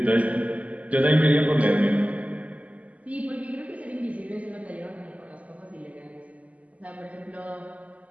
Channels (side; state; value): left; late; 0.070 ms